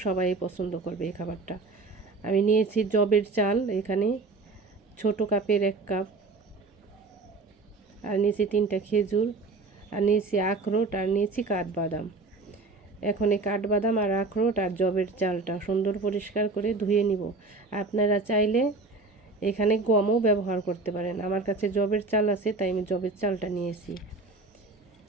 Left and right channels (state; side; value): quieter; left; 3.6 dB